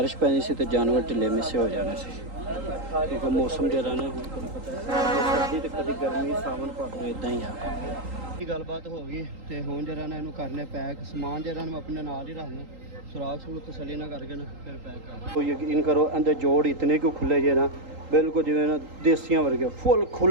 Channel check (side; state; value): left; late; 3.8 ms